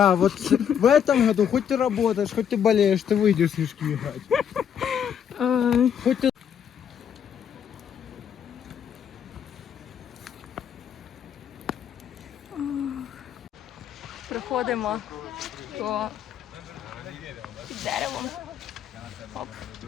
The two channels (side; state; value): right; quieter; 8.5 dB